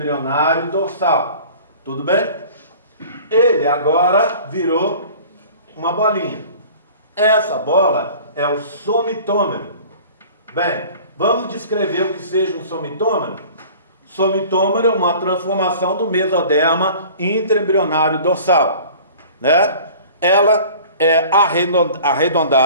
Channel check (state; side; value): inverted; both; correlation -0.45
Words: dorsal. Tudo bem? Ele agora virou uma bolinha. Essa bola é o somitômero. Bem, vamos descrever o que seja um somitômero? Somitômero é uma transformação do mesoderma intraembrionário dorsal. Né? Ela é